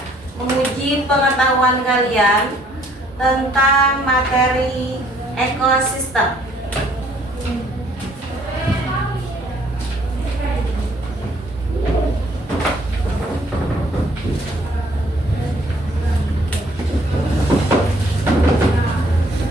menguji pengetahuan kalian tentang materi ekosistem.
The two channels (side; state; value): both; normal; correlation 0.62